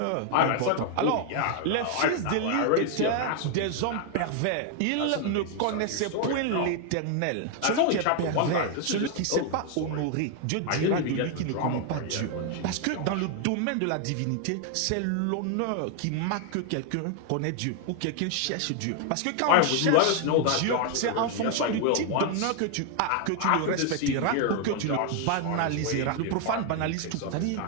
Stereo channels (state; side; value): different; both; correlation 0.00